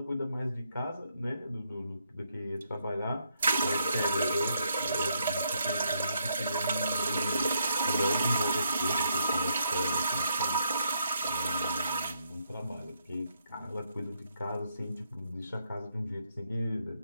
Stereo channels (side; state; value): both; inverted; correlation -0.76